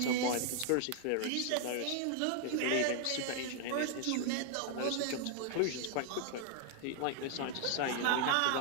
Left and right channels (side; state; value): both; different; correlation 0.00